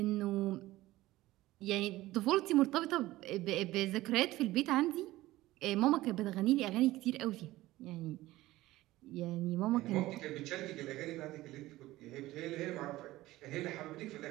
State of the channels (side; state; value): left; quieter; 17.2 dB